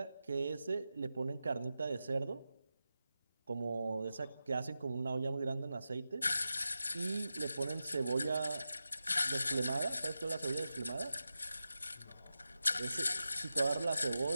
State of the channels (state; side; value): inverted; both; correlation -0.91